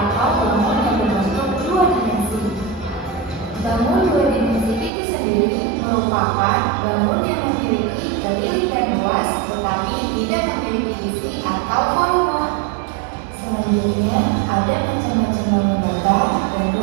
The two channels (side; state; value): left; drops out; at 4.9 s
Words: bangun yang berbentuk dua dimensi. Bangun dua dimensi itu sendiri merupakan bangun yang memiliki keliling dan luas tetapi tidak memiliki isi atau volume. Selanjutnya ada macam-macam bangun datar dan